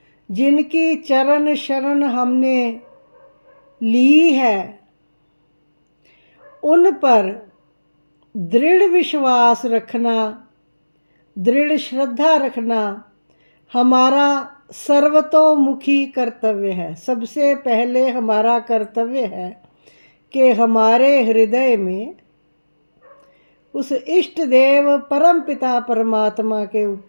जिनकी चरण शरण हमने ली है, उन पर दृढ़ विश्वास रखना, दृढ़ श्रद्धा रखना हमारा सर्वतोमुखी कर्तव्य है। सबसे पहले हमारा कर्तव्य है कि हमारे हृदय में उस इष्ट देव परम पिता परमात्मा के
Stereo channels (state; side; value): inverted; both; correlation -1.00